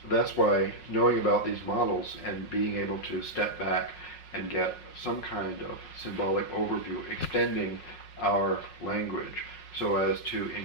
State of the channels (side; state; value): right; late; 5.5 ms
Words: that's why knowing about these models and being able to step back and get some kind of symbolic overview, extending our language so as to